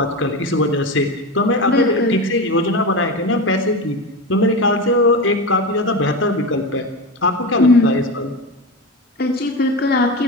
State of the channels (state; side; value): normal; both; correlation 0.22